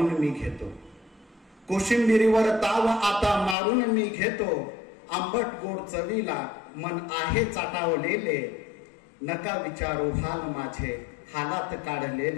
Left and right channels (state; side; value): drops out; right; at 3.6 s